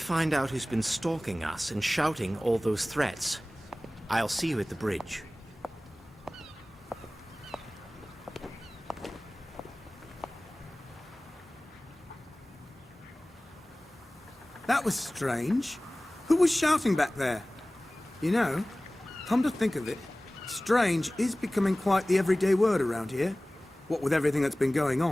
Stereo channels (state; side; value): normal; both; correlation 0.98